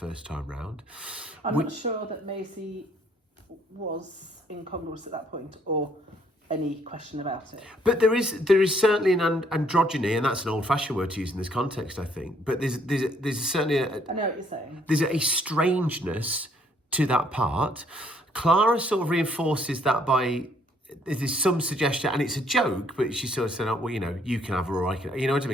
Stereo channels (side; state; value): both; normal; correlation 0.66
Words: time round. I'm not sure that Maisie was incongruous at that point, or any question about it. But there is certainly an androgyny, and that's an old-fashioned word to use in this context, I think. But there's certainly I know what you're saying. There's a strangeness to that part. Clara sort of reinforces that by there's some suggestion, and it's a joke, but she sort of said, "Oh, well, you know, you can have her, or I can," you know what I